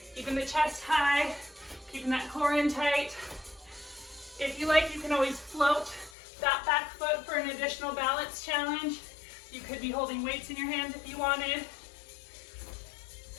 keeping the chest high, keeping that core in tight. If you like, you can always float that back foot for an additional balance challenge. You could be holding weights in your hands if you wanted.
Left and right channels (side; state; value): right; drops out; at 6.1 s